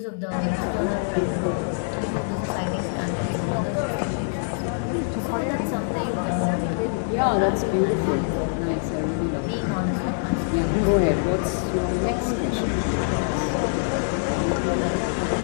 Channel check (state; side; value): silent; right; digital silence